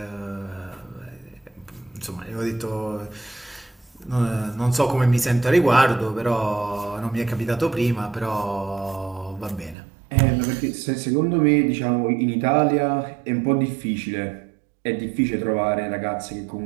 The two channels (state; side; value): drops out; left; at 9.8 s